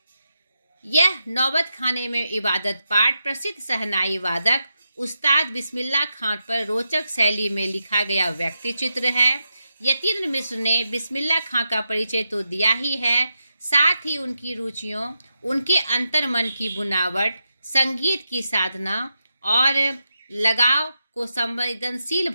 यह नौबत खाने में इबादत पाठ प्रसिद्ध शहनाई वादक उस्ताद बिस्मिल्लाह खां पर रोचक शैली में लिखा गया व्यक्ति चित्र है। यतीन्द्र मिश्र ने बिस्मिल्लाह खां का परिचय तो दिया ही है, साथ ही उनकी रुचियों, उनके अंतर्मन की बुनावट, संगीत की साधना और लगाव को संवेदनशील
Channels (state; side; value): inverted; both; correlation -0.86